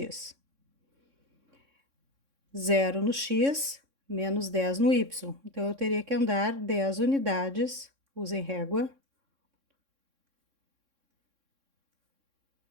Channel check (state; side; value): late; left; 3.6 ms